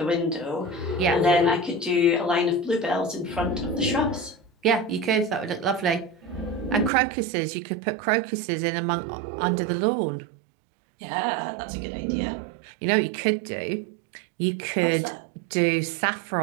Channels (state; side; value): drops out; left; at 6.9 s